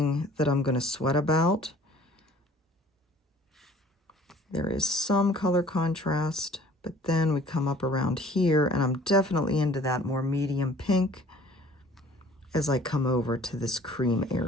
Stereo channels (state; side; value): normal; both; correlation 0.52